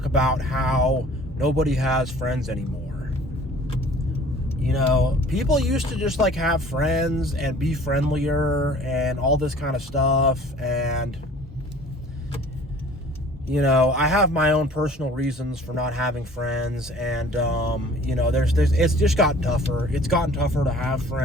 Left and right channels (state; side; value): normal; both; correlation 0.50